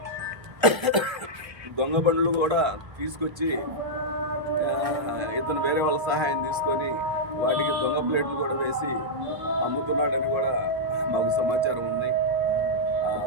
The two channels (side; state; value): left; late; 1.7 ms